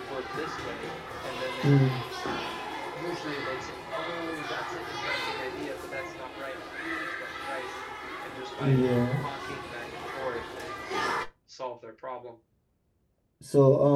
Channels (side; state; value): both; identical; correlation 1.00